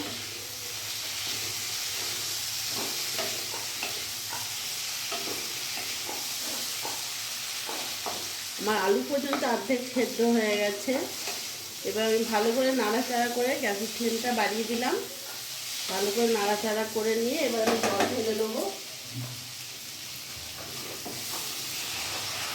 আমার আলু পর্যন্ত অর্ধেক সেদ্ধ হয়ে গেছে। এবার আমি ভালো করে নাড়াচাড়া করে গ্যাসের ফ্লেমটা বাড়িয়ে দিলাম। ভালো করে নাড়াচাড়া করে নিয়ে এবার আমি জল ঢেলে দেবো।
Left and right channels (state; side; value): identical; both; correlation 1.00